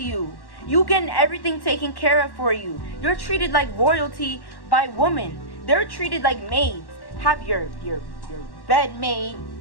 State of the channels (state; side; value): late; right; 1.1 ms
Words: you? You getting everything taken care of for you. You're treated like royalty by women. They're treated like maids. Have your bed made,